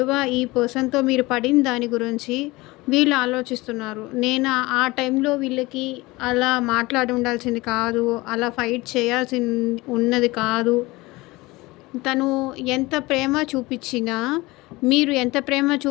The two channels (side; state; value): right; quieter; 21.5 dB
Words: ఈ పర్సన్తో మీరు పడిన దాని గురించి వీళ్ళు ఆలోచిస్తున్నారు. నేను ఆ టైంలో వీళ్ళకి అలా మాట్లాడి ఉండాల్సింది కాదు, అలా ఫైట్ చేయాల్సి ఉన్నది కాదు. తను ఎంత ప్రేమ చూపించినా, మీరు ఎంత ప్రేమ